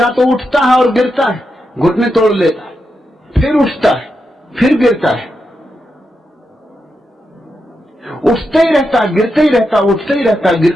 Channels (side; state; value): both; normal; correlation 0.86